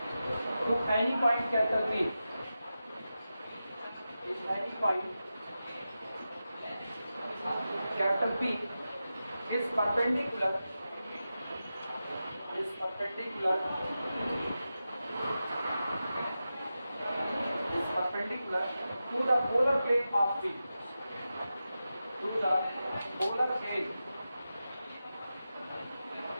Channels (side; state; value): both; inverted; correlation -0.92